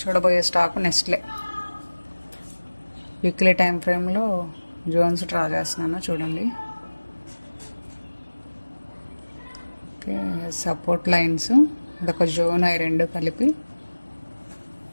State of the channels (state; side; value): inverted; both; correlation -1.00